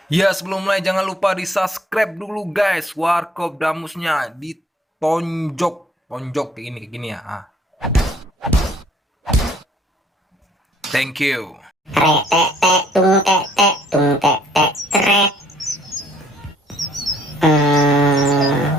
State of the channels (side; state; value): both; normal; correlation 0.61